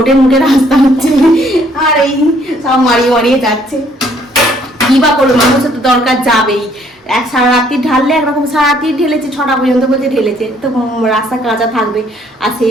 মুখে রাস্তা হচ্ছে, আর এই সব মারিয়ে মারিয়ে যাচ্ছে। কি বা করলো, মানুষের তো দরকার যাবেই। সারা রাত্রি ঢাললে একরকম, সারা রাত্রি ঢেলেছে, 6টা পর্যন্ত বলছে ঢেলেছে, তো রাস্তা কাঁচা থাকবে। আর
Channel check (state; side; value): normal; both; correlation 0.64